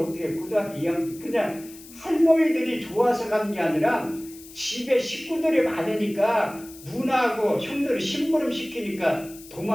고등학교 2학년 때 그냥 할머니들이 좋아서 간 게 아니라 집에 식구들이 많으니까 누나하고 형들이 심부름 시키니까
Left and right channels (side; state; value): left; noise; hiss, 19 dB below the sound